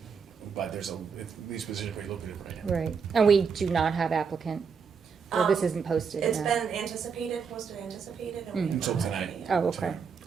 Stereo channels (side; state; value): left; quieter; 6.0 dB